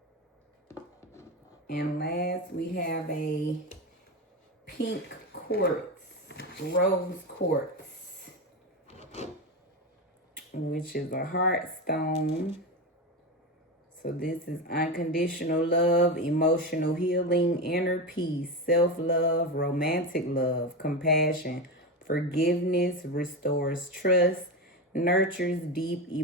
And last, we have a pink quartz, rose quartz, which is a heart stone. So this is unconditional love, emotional healing, inner peace, self-love, romantic love, compassion, forgiveness, restores trust, nurtures deep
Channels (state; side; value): normal; both; correlation 0.18